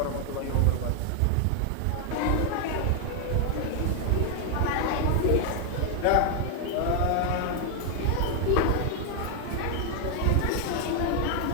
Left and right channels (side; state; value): both; different; correlation 0.00